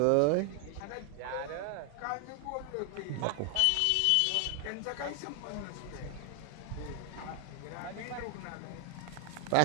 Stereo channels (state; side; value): different; both; correlation 0.00